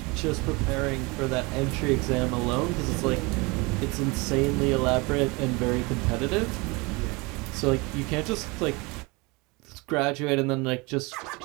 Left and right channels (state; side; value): quieter; left; 26.3 dB